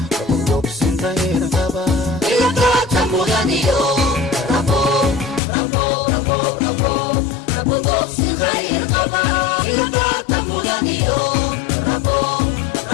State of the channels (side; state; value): right; drops out; at 5.4 s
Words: rabo dogsin qayr qaba ila doorta mudaniyo rabo rabo rabo rabo rabo dogsin qayr qaba ila doorta mudaniyo rabo